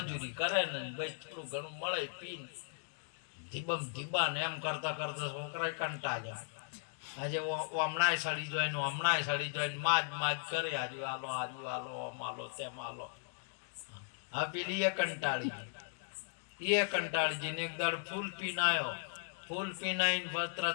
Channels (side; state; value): right; silent; digital silence